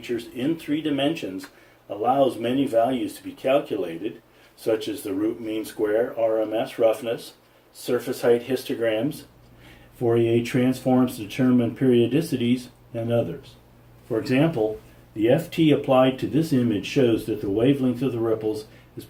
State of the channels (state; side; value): identical; both; correlation 1.00